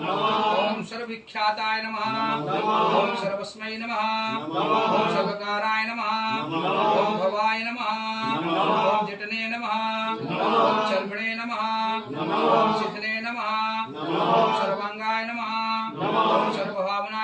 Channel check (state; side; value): identical; both; correlation 1.00